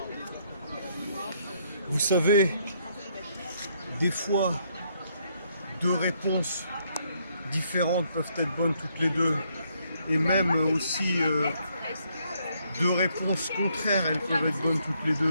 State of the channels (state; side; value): inverted; both; correlation -0.72